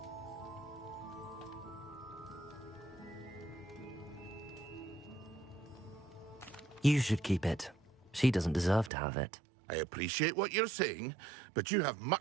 You should keep it. She doesn't deserve to have it. I appreciate what you're saying, but you have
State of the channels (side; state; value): left; drops out; at 8.9 s